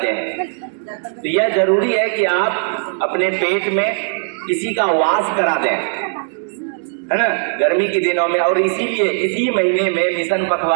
हैं। तो यह जरूरी है कि आप अपने पेट में किसी का वास करा दें, है ना, गर्मी के दिनों में। और इसीलिए इसी महीने में मिशन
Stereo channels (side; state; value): left; silent; digital silence